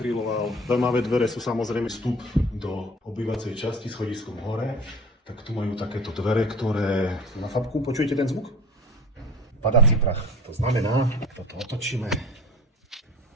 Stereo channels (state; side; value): normal; both; correlation 0.39